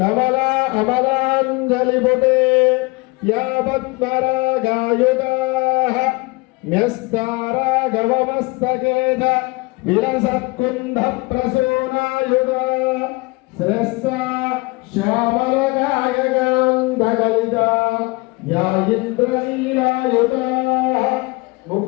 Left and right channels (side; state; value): right; quieter; 25.7 dB